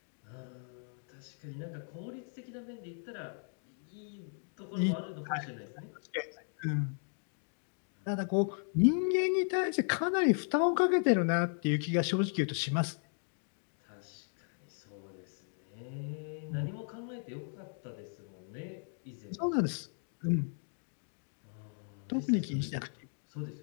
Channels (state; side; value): silent; right; 54 dB below the other